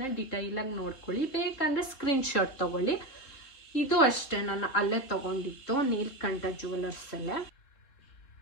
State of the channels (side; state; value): right; late; 3.7 ms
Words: ಡಿಟೈಲಾಗಿ ನೋಡ್ಕೊಳ್ಳಿ, ಬೇಕಂದರೆ ಸ್ಕ್ರೀನ್ಶಾಟ್ ತೊಗೊಳ್ಳಿ. ಇದು ಅಷ್ಟೇ, ನಾನು ಅಲ್ಲೇ ತೊಗೊಂಡಿದ್ದು ನೀಲ್ಕಂಠ ಜ್ಯುವೆಲರ್ಸಲ್ಲೇ.